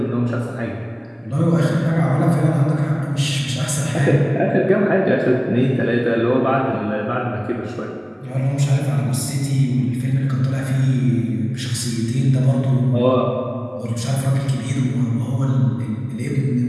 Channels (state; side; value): identical; both; correlation 1.00